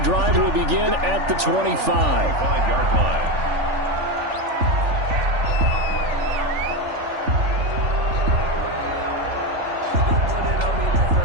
will begin at the 25. 5-yard line.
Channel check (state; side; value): late; left; 3.4 ms